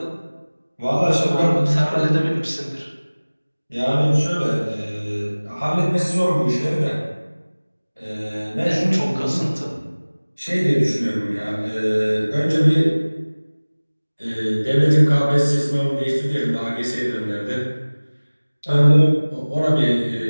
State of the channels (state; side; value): inverted; both; correlation -1.00